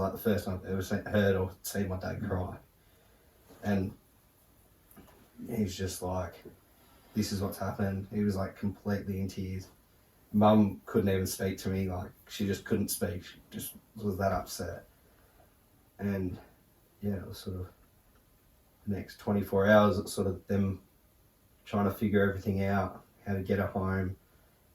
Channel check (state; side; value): identical; both; correlation 1.00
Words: the first time I've ever heard or seen my dad cry. And he's just like, this is what's happened. He was like completely in tears. Mum couldn't even speak to me, like she just couldn't speak. She just was that upset. And yeah, it was sort of the next 24 hours, it's sort of them trying to figure everything out, how to get her home,